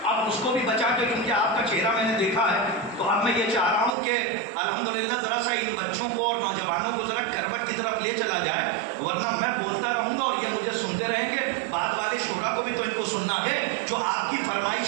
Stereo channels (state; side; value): drops out; left; at 4.0 s